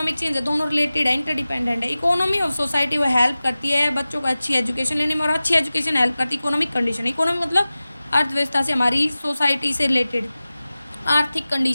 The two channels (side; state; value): both; inverted; correlation -0.96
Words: चेंज है दोनों रिलेटेड है, इंटरडिपेंडेंट है। इकोनॉमी ऑफ सोसाइटी वो हेल्प करती है बच्चों को अच्छी एजुकेशन लेने में, और अच्छी एजुकेशन हेल्प करती है इकोनॉमिक कंडीशन। इकोनॉमी मतलब अर्थव्यवस्था से, हमारी सोसाइटी से रिलेटेड आर्थिक